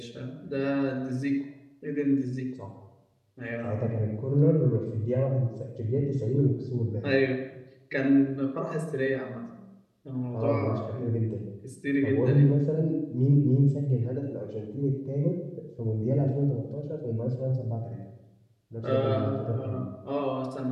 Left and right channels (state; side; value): identical; both; correlation 1.00